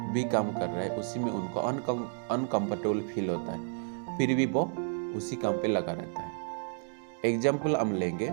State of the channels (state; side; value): silent; left; 57 dB below the other